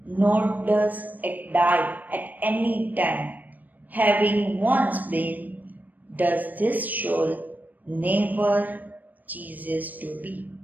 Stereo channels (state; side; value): late; left; 0.084 ms